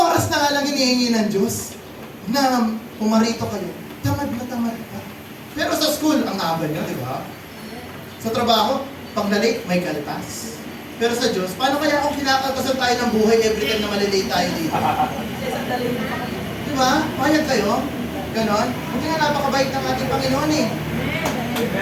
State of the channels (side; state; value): both; identical; correlation 1.00